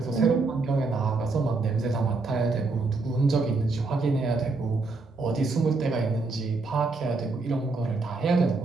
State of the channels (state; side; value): quieter; left; 3.7 dB